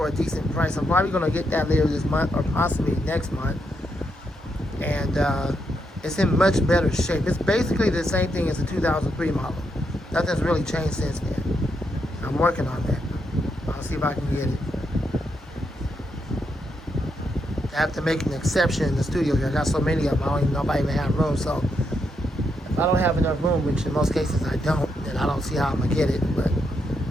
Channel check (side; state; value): both; normal; correlation 0.80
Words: a decent price. I'm probably going to get that later this month or possibly next month. And it's in much better shape. It's basically the same thing as the 2003 model. Nothing's really changed since then. I'm working on that. I'll see if I can get it. I have to make an exception in the studio here. I got so many of them, I don't even know if I even have room. So if I don't have enough room, which in most cases I don't, then I don't see how I'm going to get it. But